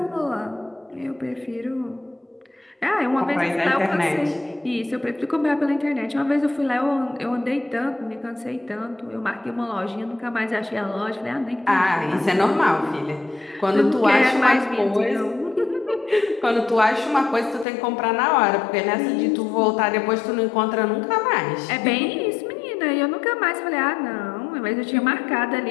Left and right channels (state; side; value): drops out; right; at 17.7 s